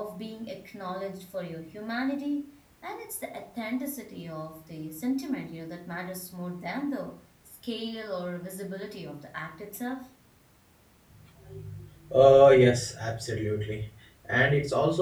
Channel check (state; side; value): identical; both; correlation 1.00